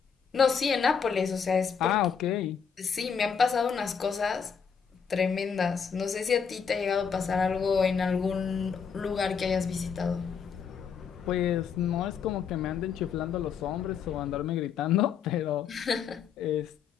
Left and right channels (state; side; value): quieter; right; 6.6 dB